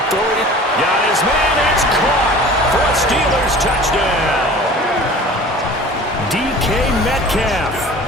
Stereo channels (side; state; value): both; normal; correlation 0.42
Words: throw it. Got his man. It's caught for a Steelers touchdown. DK Metcalf,